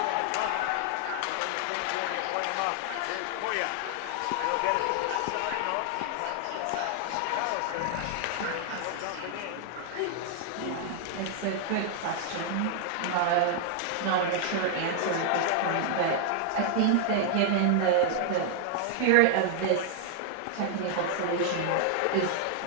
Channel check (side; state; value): both; different; correlation 0.00